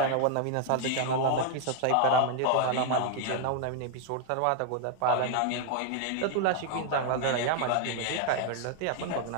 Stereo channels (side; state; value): both; different; correlation 0.00